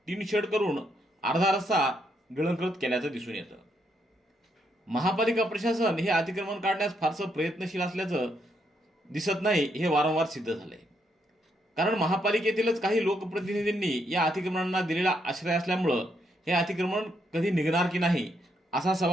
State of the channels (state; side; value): normal; both; correlation 0.77